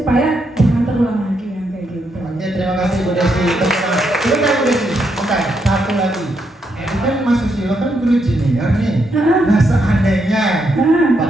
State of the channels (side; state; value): both; normal; correlation 0.79